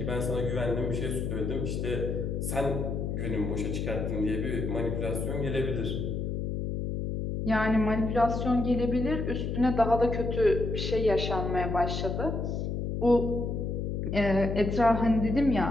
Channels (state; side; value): noise; left; hum, 2 dB below the sound